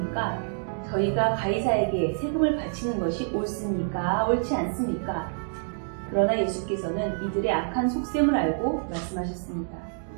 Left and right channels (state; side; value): silent; left; digital silence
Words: 저희가 가이사에게 세금을 바치는 것이 옳습니까? 옳지 않습니까? 그러나 예수께서는 이들의 악한 속셈을 알고 말씀하셨습니다.